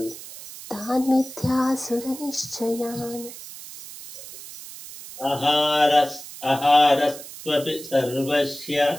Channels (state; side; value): noise; right; hiss, 14 dB below the sound